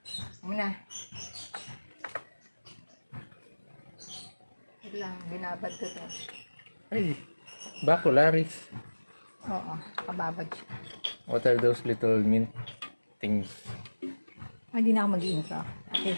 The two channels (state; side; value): inverted; both; correlation -1.00